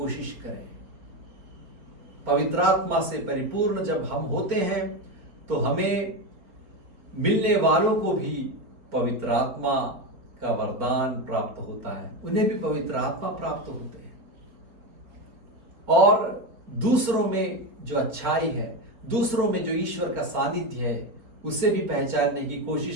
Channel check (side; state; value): left; late; 4.1 ms